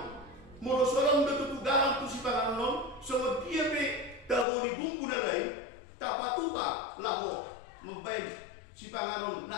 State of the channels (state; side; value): drops out; right; at 4.5 s